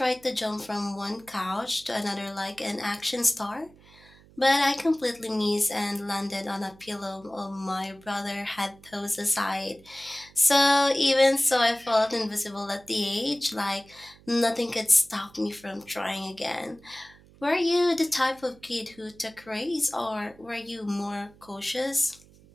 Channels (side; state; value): right; noise; hum, 25 dB below the sound